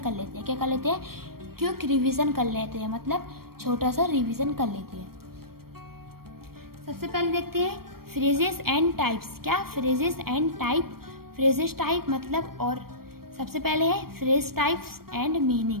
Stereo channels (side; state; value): left; late; 0.94 ms